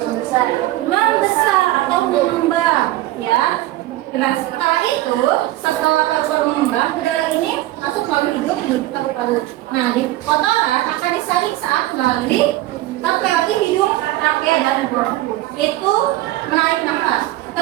Membesar atau mengembang, ya. Nah, setelah paru-paru mengembang, udara ini masuk melalui hidung menuju paru-paru. Nah, di kotoran akan disaring saat melalui hidung, trachea dan bronkus. Itu menarik nafas.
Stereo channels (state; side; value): quieter; left; 16.3 dB